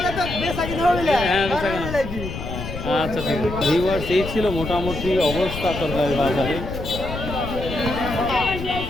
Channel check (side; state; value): left; noise; rumble, 7 dB below the sound